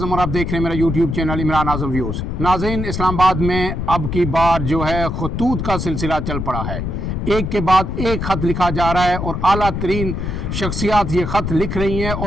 और आप देख रहे हैं मेरा यूट्यूब चैनल इमरान आज़म व्यूज़। नाज़रीन, इस्लामाबाद में अब की बार जो है खतूत का सिलसिला चल पड़ा है। एक के बाद एक ख़त लिखा जा रहा है और आला तरीन शख्सियात ये ख़त लिख रही हैं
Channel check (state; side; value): noise; left; rumble, 3 dB below the sound